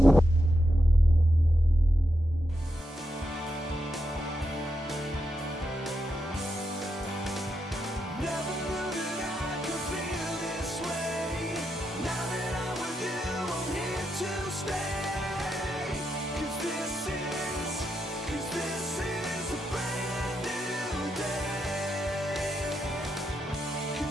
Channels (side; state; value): both; normal; correlation 0.84